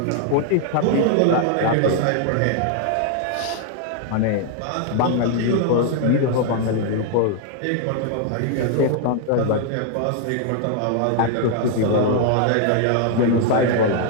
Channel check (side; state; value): both; different; correlation 0.00